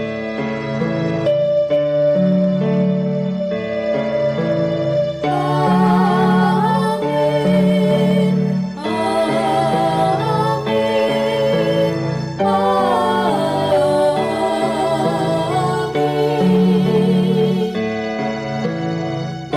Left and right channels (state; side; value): identical; both; correlation 1.00